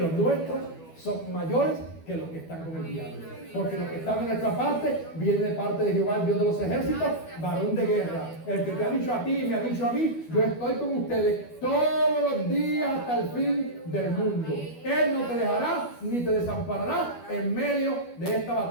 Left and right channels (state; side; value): late; right; 12 ms